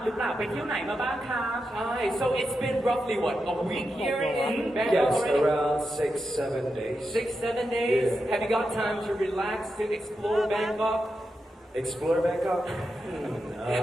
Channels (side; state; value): both; normal; correlation 0.87